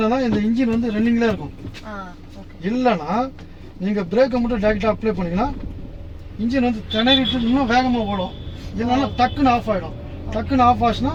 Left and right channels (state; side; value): identical; both; correlation 1.00